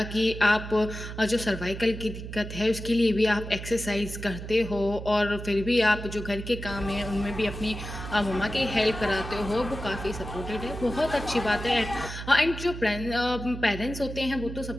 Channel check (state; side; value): noise; right; hum, 9 dB below the sound